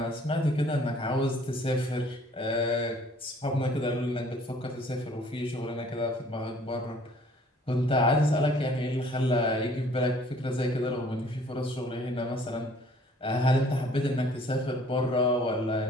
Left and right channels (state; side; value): normal; both; correlation 0.56